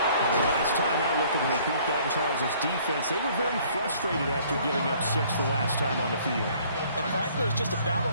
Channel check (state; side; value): inverted; both; correlation -0.58